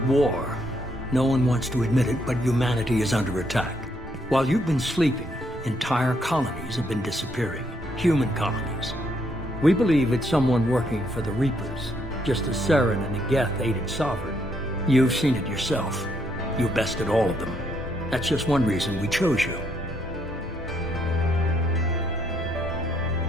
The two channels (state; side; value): normal; both; correlation 0.73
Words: war. No one wants to admit it, but humanity is under attack. While you've been sleeping, entire colonies have been disappearing. Human colonies. We believe it's someone working for the Reapers, just as Saren and the Geth aided Sovereign. You've seen it yourself. You bested all of them. That's just one reason we chose you.